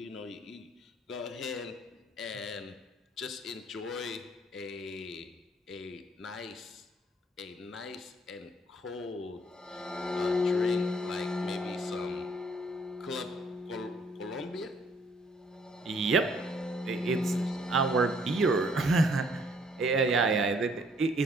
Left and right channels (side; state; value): both; normal; correlation 0.64